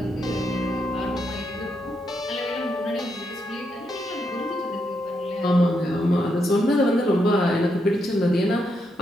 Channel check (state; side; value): normal; both; correlation 0.80